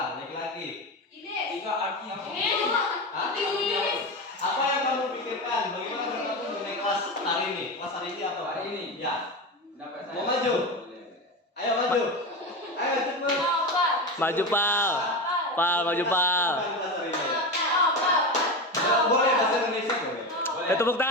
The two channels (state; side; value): normal; both; correlation 0.21